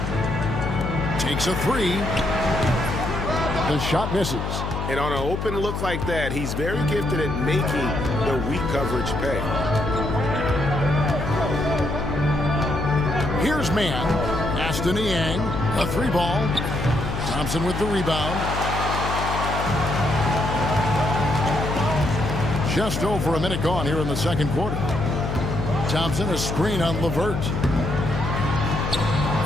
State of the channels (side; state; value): left; noise; hum, 3 dB below the sound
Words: Takes a 3. The shot misses. And on an open look like that, he's very gifted at making the weak coverage pay. Here's man. Aston Yang, a 3-ball. Thompson with the rebound. Just over a minute gone here in the second quarter. Thompson, a screen on LeVert.